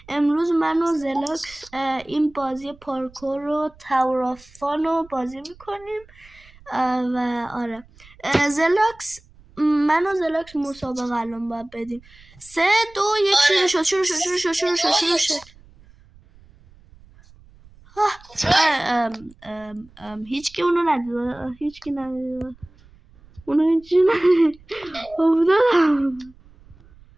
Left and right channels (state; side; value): noise; right; rumble, 25 dB below the sound